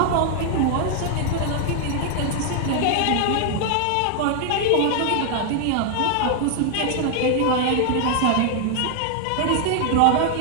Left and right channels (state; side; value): different; both; correlation 0.00